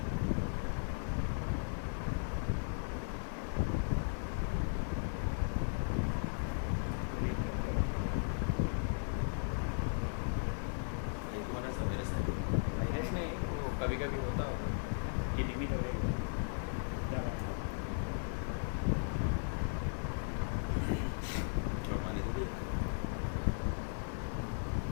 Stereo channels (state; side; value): silent; right; 53 dB below the other